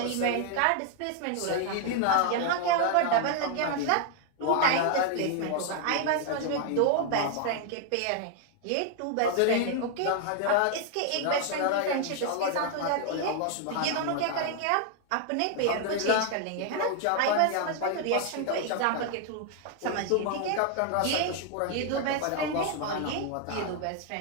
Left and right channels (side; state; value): both; different; correlation 0.00